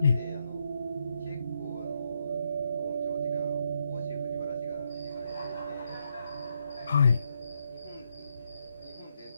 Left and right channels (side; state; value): both; inverted; correlation -0.78